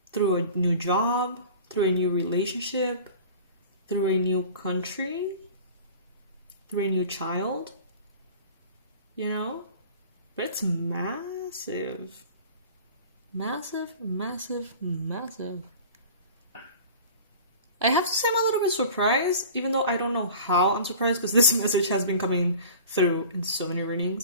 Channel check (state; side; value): inverted; both; correlation -0.41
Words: Through a new job, through a new relationship, through a new country, through a new child. You know? But it's massive. Massive, massive, massive. I have to say I'm a little bit surprised, even though I don't know how I'm surprised, because this message has been coming through in so many